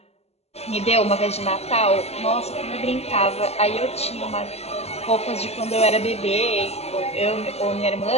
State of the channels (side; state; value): right; late; 0.30 ms